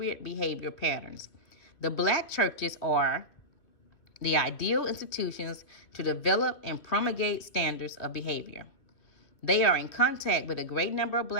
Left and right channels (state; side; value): late; right; 2.4 ms